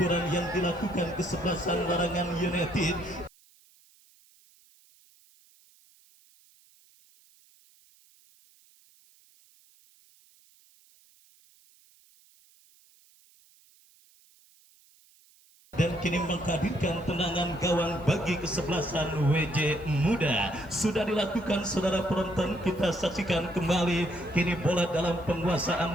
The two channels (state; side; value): noise; right; hiss, 30 dB below the sound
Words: yang dilakukan kesebelasan Larangan United. Dan kini menghadirkan tendangan gawang bagi kesebelasan WJ Muda. Sudah dilakukan saudara penonton, kita saksikan kembali kini bola dalam